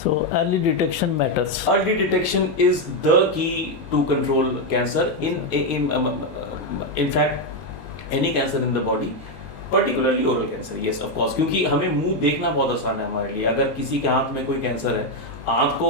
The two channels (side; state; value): right; late; 19 ms